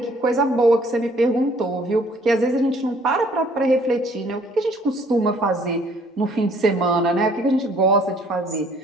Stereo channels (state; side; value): normal; both; correlation 0.59